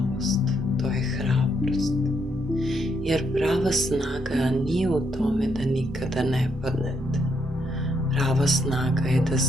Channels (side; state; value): both; normal; correlation 0.76